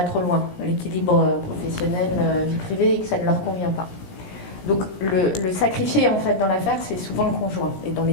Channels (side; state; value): right; late; 17 ms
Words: trop loin, l'équilibre professionnel, vie privée, et que ça ne leur convient pas. Donc le sacrifié en fait dans l'affaire, c'est souvent le conjoint, et dans les